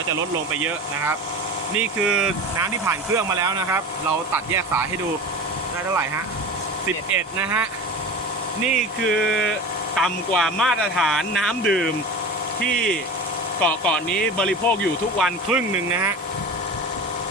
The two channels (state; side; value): normal; both; correlation 0.32